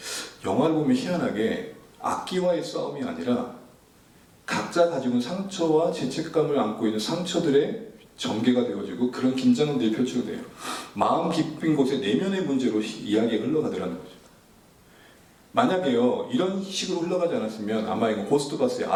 영화를 보면 희한하게 악기와의 싸움이 아니라 각자 가지고 있는 상처와 죄책감을 안고 있는 상처들의 전개가 되어지고 그런 긴장들이 펼쳐져요. 마음 깊은 곳에 내면의 문제로 이야기가 흘러가더라는 거죠. 만약에요 이런 식으로 흘러가지 않았으면 아마 이거 고스트바스의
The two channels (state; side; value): identical; both; correlation 1.00